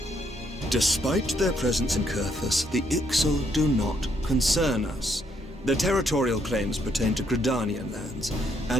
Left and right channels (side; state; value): both; normal; correlation 0.73